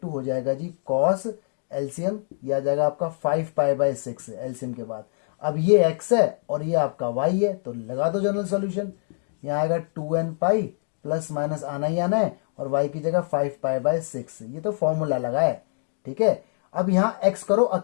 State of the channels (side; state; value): right; silent; 62 dB below the other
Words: हो जाएगा जी cos, एलसीएम ये आ जाएगा आपका 5π/6 एलसीएम के बाद। अब ये x है और ये आपका y है, तो लगा दो जनरल सॉल्यूशन। यहाँ आएगा 2n पाई, प्लस माइनस आना ही आना है, और y की जगह 5π/6, ये तो फॉर्मूला लगा है, ठीक है। अब यहाँ x करो